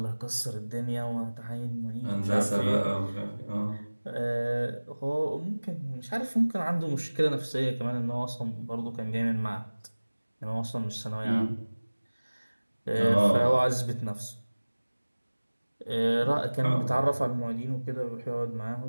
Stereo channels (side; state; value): both; inverted; correlation -1.00